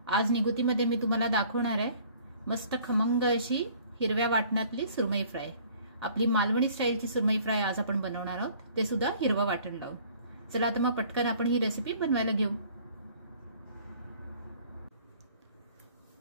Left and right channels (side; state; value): both; inverted; correlation -0.54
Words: आज निगुतीमध्ये मी तुम्हाला दाखवणार आहे मस्त खमंग अशी हिरव्या वाटणातली सुरमई फ्राय। आपली मालवणी स्टाईलची सुरमई फ्राय आज आपण बनवणार आहोत, ते सुद्धा हिरवं वाटण लावून। चला तर मग पटकन आपण ही रेसिपी बनवायला घेऊ।